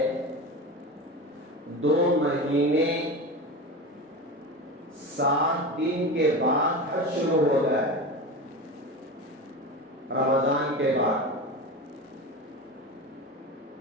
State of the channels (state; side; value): normal; both; correlation 0.26